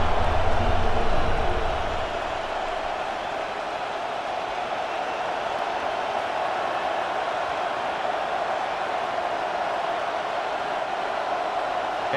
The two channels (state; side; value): identical; both; correlation 1.00